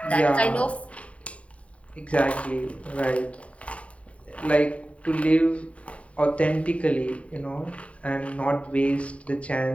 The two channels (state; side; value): late; right; 0.065 ms